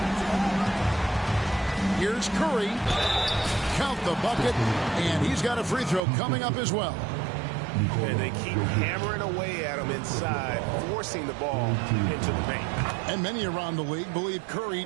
Here's Curry. Count the bucket, and he's got a free throw coming up as well. And they keep hammering away at him inside, forcing the ball into the paint. And many around the league believe Curry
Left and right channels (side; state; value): left; drops out; at 6.0 s